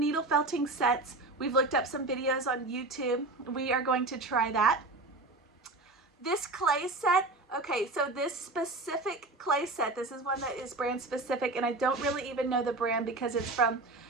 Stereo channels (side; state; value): left; quieter; 3.0 dB